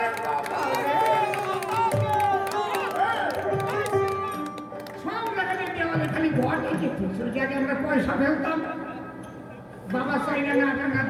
চাইলে না টানা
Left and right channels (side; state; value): both; identical; correlation 1.00